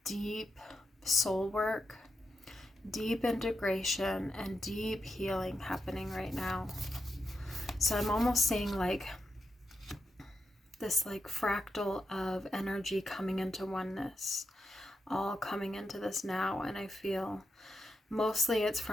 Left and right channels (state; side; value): normal; both; correlation 0.85